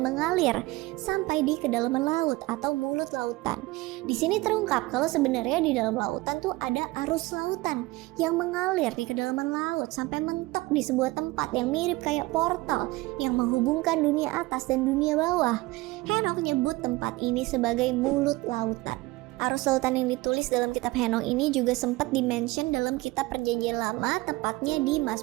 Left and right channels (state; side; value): quieter; left; 20.9 dB